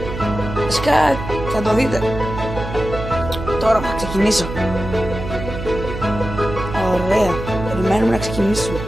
Βασικά θα το δείτε. Τώρα θα ξεκινήσω. Ωραία, περιμένουμε να ξεκινήσουμε.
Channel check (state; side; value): noise; right; hum, 8 dB below the sound